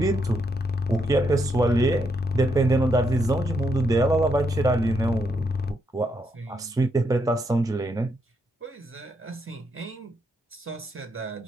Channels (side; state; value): both; normal; correlation 0.78